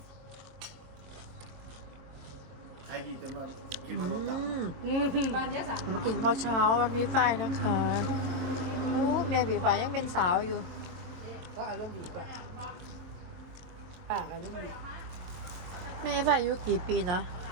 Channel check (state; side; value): late; left; 23 ms